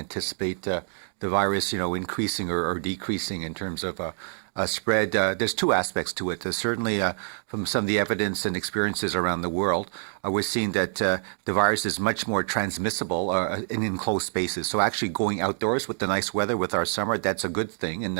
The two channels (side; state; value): left; silent; digital silence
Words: the virus, increasing or decreasing in terms of spread. There's two aspects to it. Certainly, from some of the evidence and experiences around the world, we're seeing that the virus is much more transmissible in enclosed spaces. So actually going outdoors with the nice weather with our summer, that's a good thing. And